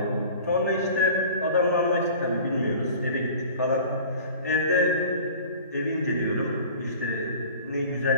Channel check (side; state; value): both; inverted; correlation -0.43